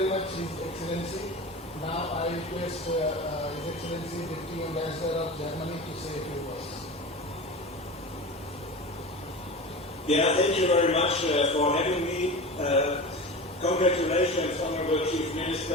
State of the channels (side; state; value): both; normal; correlation 0.30